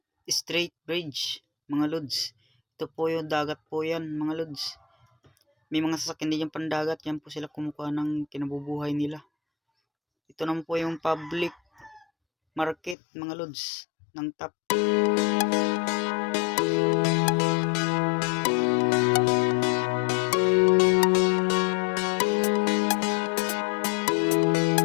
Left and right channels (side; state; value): right; drops out; at 13.0 s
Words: Strait Bridge mga lods. Ito po yung dagat po yan mga lods. May mga sasakyan din yung pandagat, yan po sila kumukuha ng kinabubuhay nila. Ito naman po yung public market mga lods ng Top.